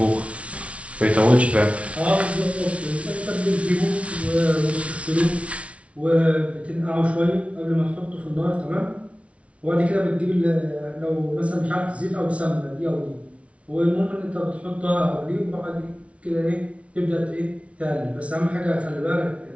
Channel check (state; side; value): late; left; 0.063 ms